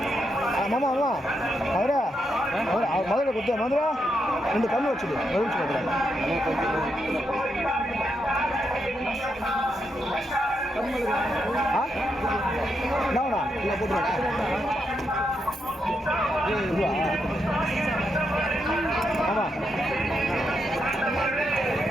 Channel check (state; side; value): normal; both; correlation 0.82